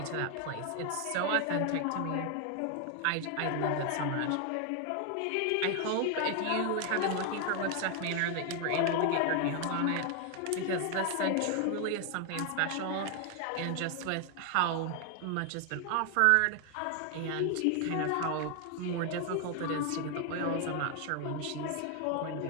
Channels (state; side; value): different; both; correlation 0.00